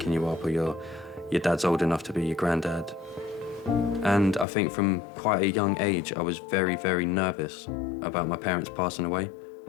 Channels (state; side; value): drops out; right; at 4.5 s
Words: you up, or your dad's old enough to be your granddad. And I think from quite a young age, I was very, very nervous about my parents passing away.